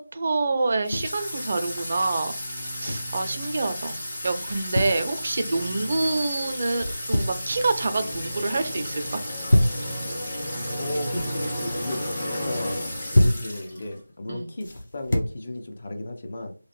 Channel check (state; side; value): inverted; both; correlation -0.94